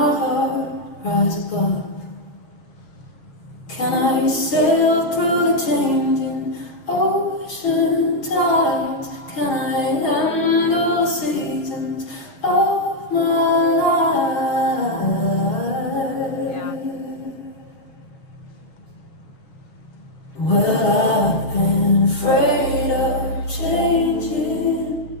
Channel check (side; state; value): right; late; 6.7 ms